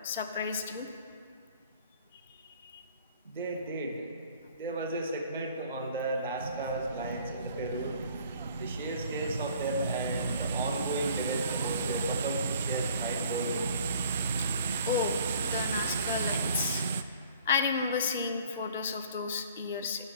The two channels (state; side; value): inverted; both; correlation -0.53